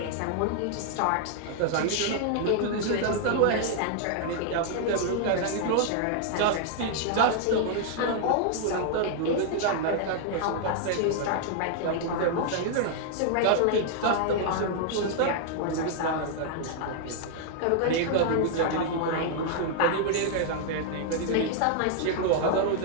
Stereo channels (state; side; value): different; both; correlation -0.01